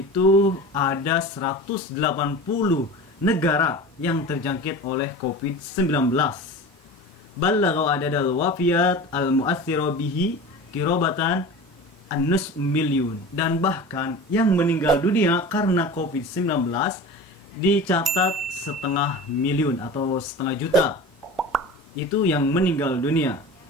ada 180 negara yang terjangkit oleh COVID-19. Ballagha adadal wafiyat al-mu'aththira bihi kirobatan an-nus milyun. Dan bahkan yang meninggal dunia karena COVID-19 dicatat 1,5 miliun atau 1,5 juta. Itu yang meninggal dunia.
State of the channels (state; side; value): normal; both; correlation 0.34